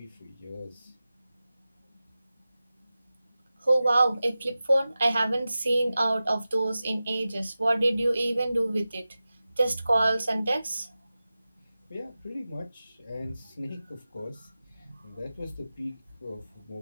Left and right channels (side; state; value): both; inverted; correlation -0.95